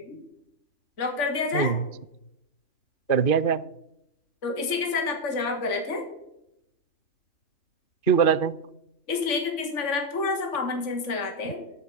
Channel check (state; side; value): late; right; 3.5 ms